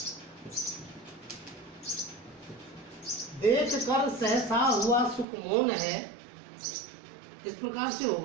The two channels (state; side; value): drops out; left; at 5.2 s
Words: देख कर सहसा हुआ सुख मौन है। इस प्रकार से